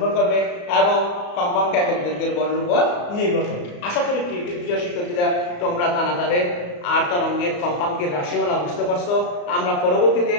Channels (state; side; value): late; right; 34 ms